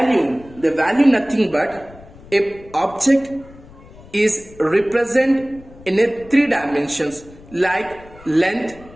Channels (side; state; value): left; noise; rumble, 21 dB below the sound